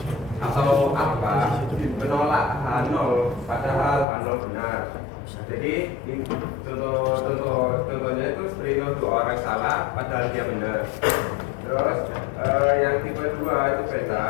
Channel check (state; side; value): drops out; right; at 4.0 s